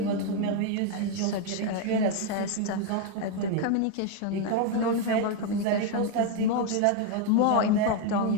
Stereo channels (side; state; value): both; different; correlation 0.01